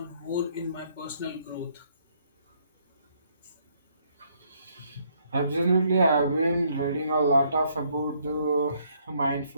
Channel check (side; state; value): both; inverted; correlation -0.69